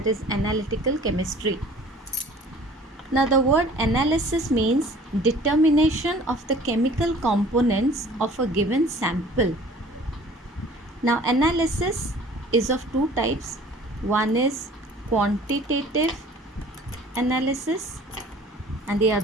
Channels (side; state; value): both; normal; correlation 0.49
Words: is analytical chemistry. Now the word analysis means determination of the chemical components of a given sample. Now analysis is of two types. One is quantitative analysis and the